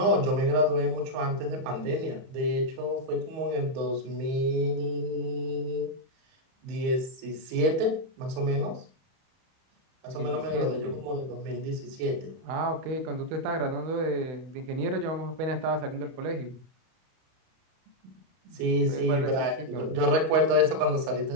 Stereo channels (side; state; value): left; late; 31 ms